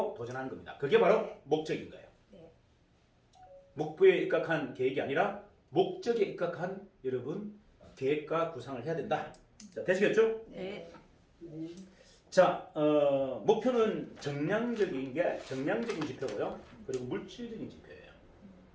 도전하는 겁니다. 그게 바로 목적인 거예요. 네. 목표에 입각한 계획이 아니라 목적에 입각한 여러분 계획과 구상을 해야 된다. 자, 되시겠죠? 네. 자, 목표는 정량적인 지표고요. 그리고 물질적인 지표예요.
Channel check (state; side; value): identical; both; correlation 1.00